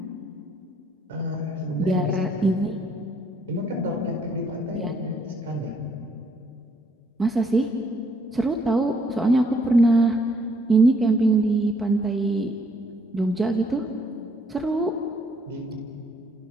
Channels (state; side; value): normal; both; correlation 0.68